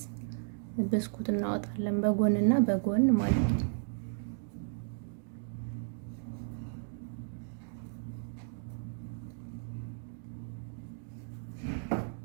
ብስኩት እናወጣለን በጎንና በጎን ማለት ነው።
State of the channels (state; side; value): silent; left; digital silence